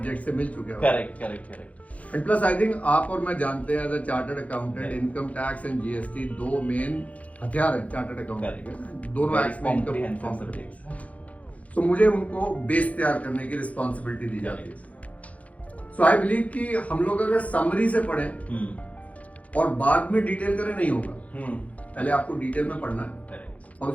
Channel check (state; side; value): late; right; 0.067 ms